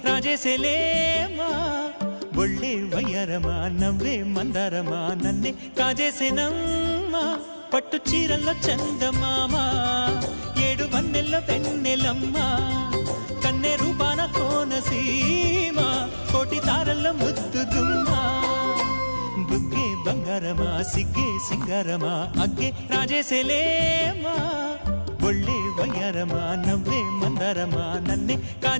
రాజేసేలేమా ఒళ్ళే వయ్యారమా నవ్వే మందారమా నన్నే కాజేసేనమ్మా పట్టు చీరల్లో చందమామా ఏడు వన్నెల్లో వెన్నెలమ్మా కన్నె రూపాన కోనసీమ కోటి తారల్లో ముద్దుదుమ్మా బుగ్గే బంగారమా సిగ్గే సింగారమా అగ్గే రాజేసేలేమా ఒళ్ళే వయ్యారమా నవ్వే మందారమా నన్నే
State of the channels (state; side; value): inverted; both; correlation -1.00